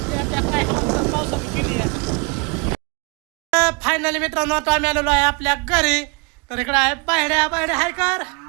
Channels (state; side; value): quieter; left; 32.3 dB